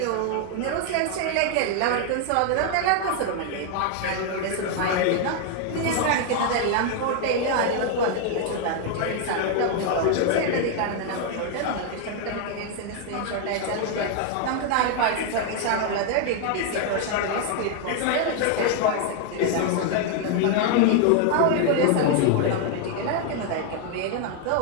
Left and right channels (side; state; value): both; different; correlation 0.00